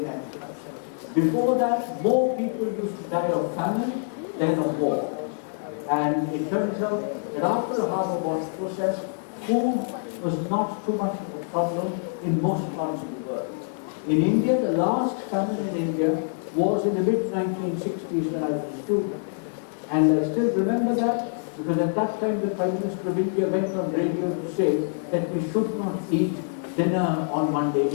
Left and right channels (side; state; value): right; silent; digital silence